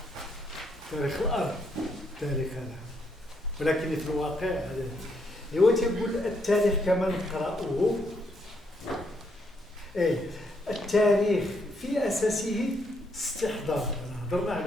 تاريخ الأرض، تاريخ هذا، ولكن في الواقع هذا هو تيقول التاريخ كما نقرأه. التاريخ في أساسه استحضار، هضرنا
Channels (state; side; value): normal; both; correlation 0.75